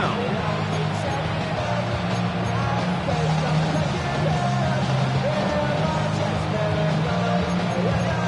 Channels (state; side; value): identical; both; correlation 1.00